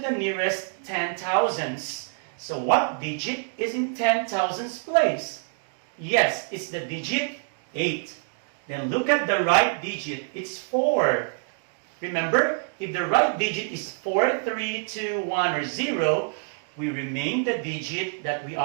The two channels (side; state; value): left; silent; digital silence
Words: nearest 10,000s. So what digit is in 10,000s place? Yes, it's the digit 8. Then look at the right digit. It's 4. Remember, if the right digit is 4, 3, 2, 1, or 0, we remain the digit that we